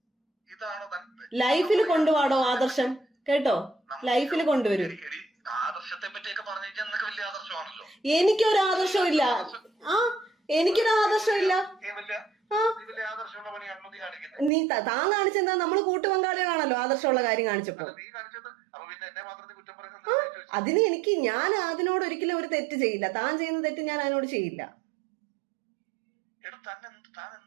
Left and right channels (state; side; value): drops out; left; at 14.5 s